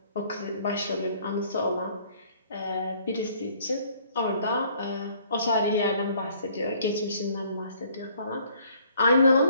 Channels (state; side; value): inverted; both; correlation -0.60